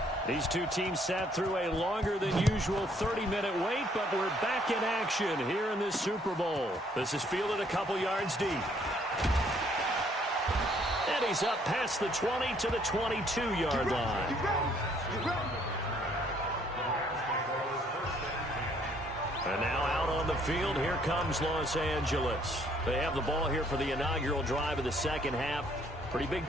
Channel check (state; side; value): normal; both; correlation 0.65